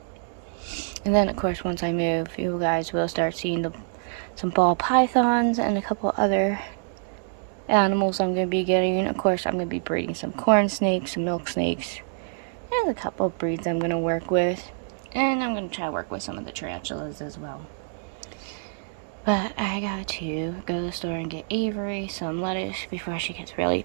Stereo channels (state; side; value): silent; left; digital silence